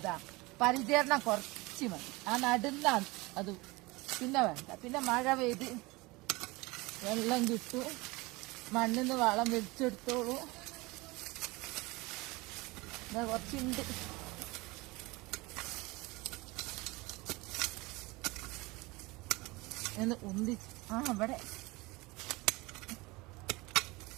പരിചരണം കുറച്ച് മതി. ആ നടുന്നാണ് അത്, പിന്നെ വേണ്ട. പിന്നെ മഴ പെയ്ത് വെള്ളം കിട്ടും, മണ്ണിന്ന് വളം വെച്ചെടുത്തോളൂ. ഇതാ കുറച്ചുണ്ട്. എന്ന് ഉന്തി ഇവിടെ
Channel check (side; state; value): left; quieter; 23.3 dB